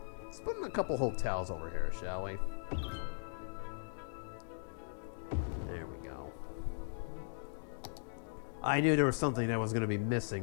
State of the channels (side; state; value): right; silent; digital silence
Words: Let's put in a couple hotels over here, shall we? There we go. I knew there was something that was going to be